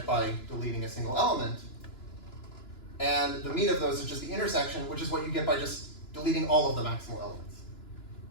by deleting a single element. And the meat of those is just the intersection, which is what you get by just deleting all of the maximal elements.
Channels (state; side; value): late; right; 2.9 ms